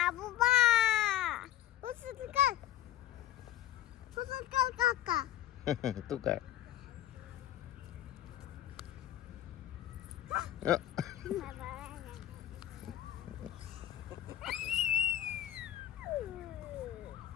बुबा उचल कर काका तू काय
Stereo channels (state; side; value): quieter; right; 12.9 dB